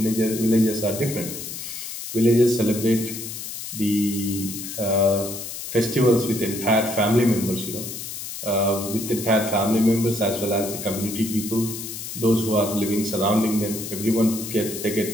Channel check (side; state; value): left; noise; hiss, 8 dB below the sound